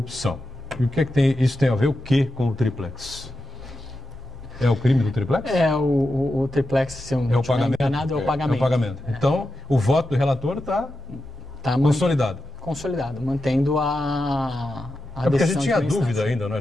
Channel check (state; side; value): noise; right; hum, 25 dB below the sound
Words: E o que é que isso tem a ver o que com o Triplex? É o crime do Triplex? O Triplex, se eu não estiver enganado, é o pagamento. É o pagamento. Então, o voto do relator está consolidado. Consolidado, mantendo a porque a decisão gente tinha de dúvida instância. ainda, né? A